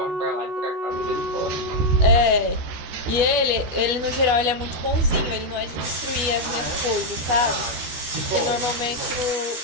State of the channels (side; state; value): left; late; 12 ms